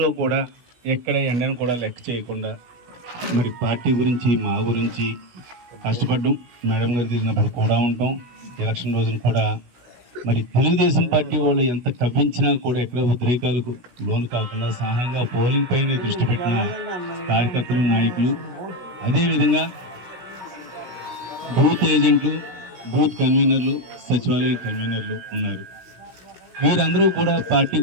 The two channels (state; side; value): late; left; 17 ms